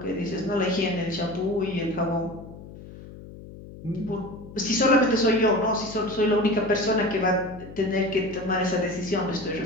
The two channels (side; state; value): left; noise; hum, 16 dB below the sound